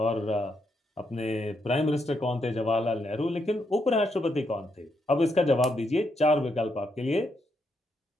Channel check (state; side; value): normal; both; correlation 0.79